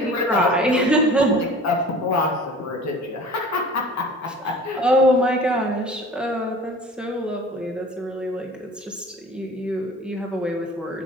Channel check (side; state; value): both; normal; correlation 0.43